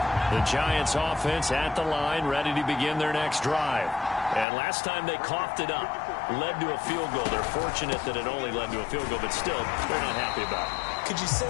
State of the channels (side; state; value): right; drops out; at 4.5 s